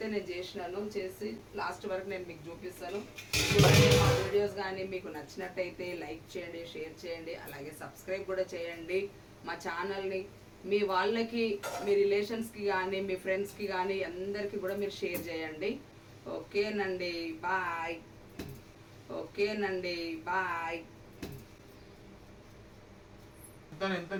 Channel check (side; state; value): both; identical; correlation 1.00